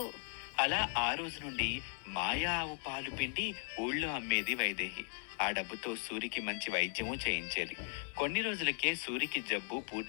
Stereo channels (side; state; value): right; silent; 53 dB below the other